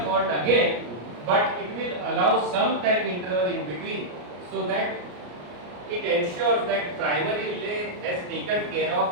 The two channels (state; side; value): late; left; 34 ms